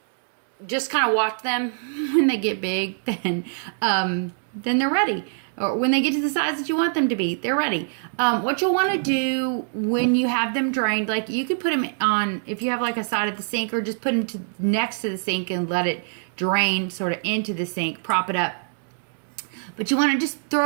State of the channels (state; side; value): silent; left; digital silence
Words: just kind of watch them. When they get big, then they're ready. Or when they get to the size that you want them to be, they're ready. What you'll want to do when you have them drained, like you could put them on, if you have like a side of the sink, or just put them next to the sink and let it drain sort of into the sink, prop it up. But you want to just